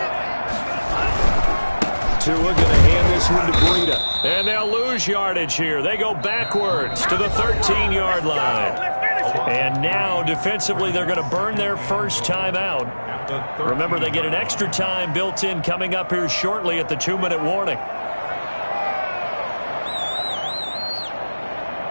Tua going to hand this one to Breida. And they'll lose yardage here. They go backwards to the 13-yard line. And now, defensively, they're going to burn their first timeout. Remember, they get an extra time built in coming up here shortly at the 2-minute warning.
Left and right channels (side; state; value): both; inverted; correlation -1.00